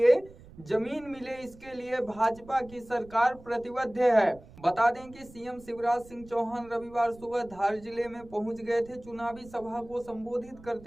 जमीन मिले। इसके लिए भाजपा की सरकार प्रतिबद्ध है। बता दें कि सीएम शिवराज सिंह चौहान रविवार सुबह धार जिले में पहुंच गए थे। चुनावी सभा को संबोधित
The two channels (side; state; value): right; noise; rumble, 21 dB below the sound